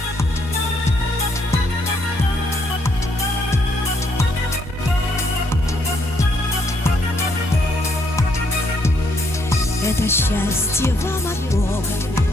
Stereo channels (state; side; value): normal; both; correlation 0.72